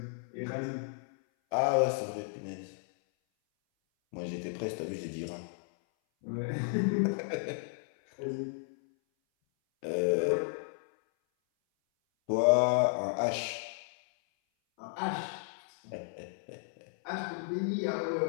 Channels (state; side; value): silent; right; 56 dB below the other